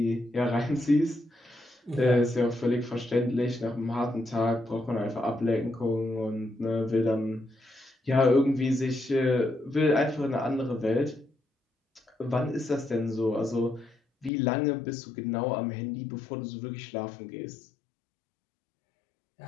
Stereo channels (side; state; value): right; drops out; at 14.3 s